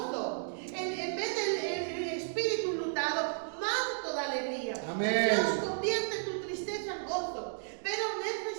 En vez del espíritu lutado, manto de alegría. Amén. Dios convierte tu tristeza en gozo, pero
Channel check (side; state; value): left; silent; digital silence